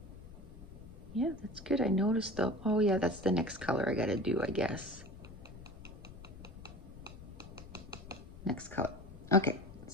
Yeah, that's good. I noticed though. Oh yeah, that's the next color I gotta do, I guess. Next color. Okay,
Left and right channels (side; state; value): left; noise; rumble, 15 dB below the sound